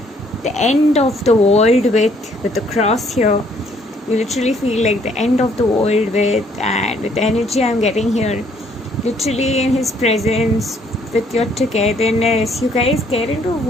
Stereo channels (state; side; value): normal; both; correlation 0.65